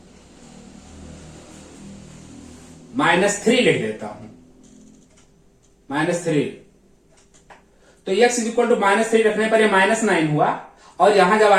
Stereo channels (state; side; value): identical; both; correlation 1.00